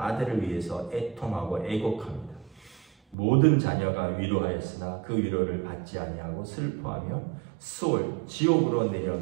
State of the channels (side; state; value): left; drops out; at 3.2 s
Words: 위해서 애통하고 애곡합니다. 모든 자녀가 위로하였으나 그 위로를 받지 아니하고 슬퍼하며 수월 지옥으로